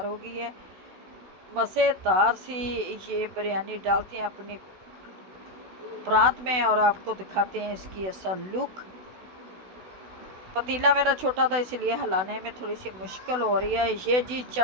हो गई है, मज़ेदार सी। ये बिरयानी डालते हैं अपनी प्रांत में और आपको दिखाते हैं इसकी असल लुक। पतीला मेरा छोटा था इसलिए हिलाने में थोड़ी सी मुश्किल हो रही है। ये जी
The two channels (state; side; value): late; left; 16 ms